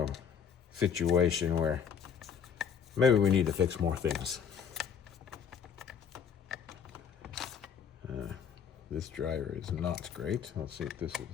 situation where maybe we need to fix more things. This driver is not great. Let's see if this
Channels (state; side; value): quieter; right; 7.4 dB